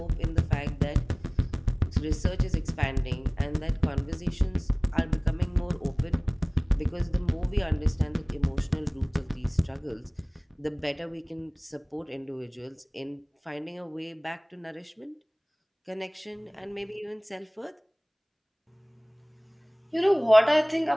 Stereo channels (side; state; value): both; identical; correlation 1.00